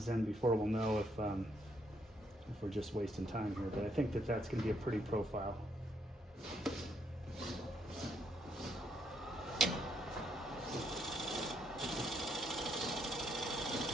in before we'll know if we're just wasting time here, but I think that that's going to be a pretty profile.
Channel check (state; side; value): normal; both; correlation 0.73